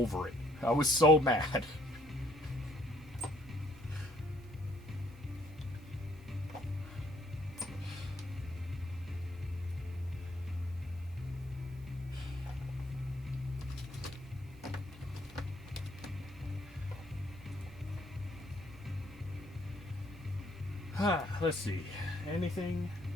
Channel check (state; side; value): normal; both; correlation 0.65